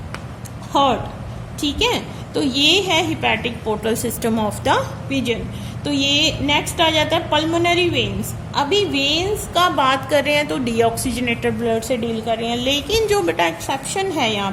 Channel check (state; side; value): identical; both; correlation 1.00